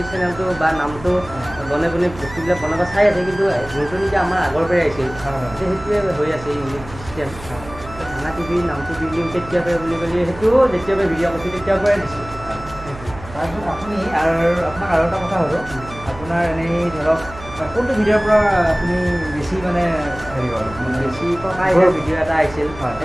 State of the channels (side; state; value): right; noise; hum, 16 dB below the sound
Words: চেনেলটো বা নামটো বনে বনে বস্তুবিলাক বনাব চাই আছে, কিন্তু যোনটো নেকি আমাৰ আগৰ পৰাই আহিছিল সেইটোৱে হৈ আছে ইউনিক চিষ্টেম। ভাঙা টিভি নামটো দি দিওঁ কেতিয়াৰ পৰা বুলি ক'লে সেইটোও যেতিয়াৰ পৰা ভিডিঅ' কৰিছিল তেতিয়াৰ পৰাই দিছিল। তাৰপিছত আপুনি আপোনাক আৰু এটা কথা সুধোঁ, আপোনাৰ এনেই ধৰক কোনটো ভিডিঅ'ৰ পৰা আপুনি বেছি মানে হেৰি হ'ল, মানে বেছি ককাই ভিডিঅ' এটা আহিছিল,